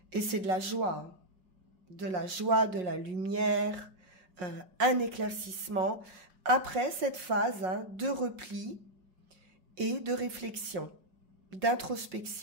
Et c'est de la joie, de la lumière, un éclaircissement après cette phase de repli et de réflexion,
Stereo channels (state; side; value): late; left; 5.5 ms